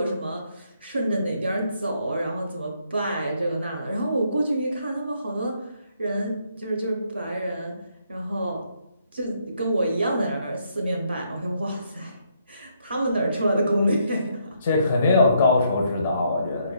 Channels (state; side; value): inverted; both; correlation -0.73